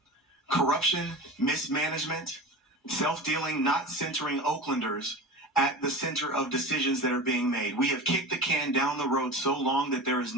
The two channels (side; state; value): both; normal; correlation 0.31